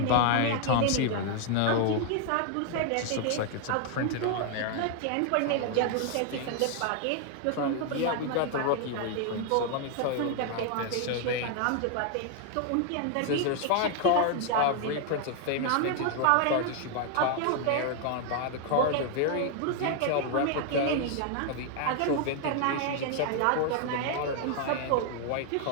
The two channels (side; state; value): both; different; correlation 0.00